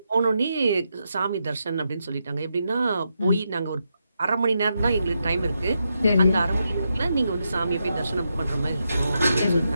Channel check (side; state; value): both; inverted; correlation -0.84